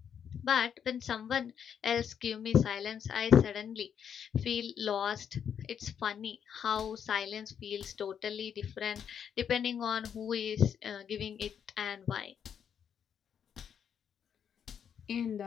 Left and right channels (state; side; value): quieter; right; 8.1 dB